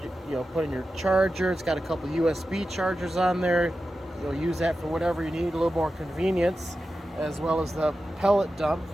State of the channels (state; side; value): normal; both; correlation 0.92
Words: it, put in your charger. It's got a couple USB chargers on there. You'll use that for whatever you need, a little more convenience, as well as the pellet dump